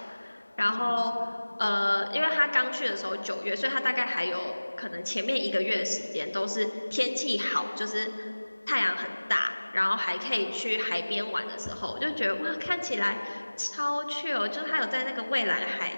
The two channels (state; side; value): inverted; both; correlation -1.00